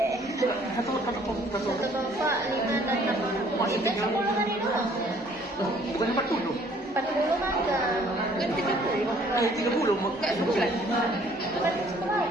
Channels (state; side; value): normal; both; correlation 0.59